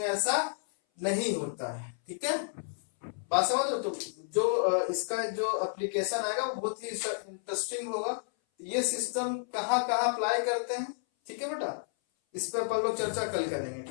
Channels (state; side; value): silent; right; 57 dB below the other